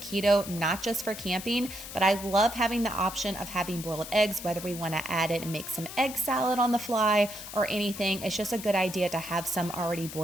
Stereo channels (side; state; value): left; noise; hiss, 11 dB below the sound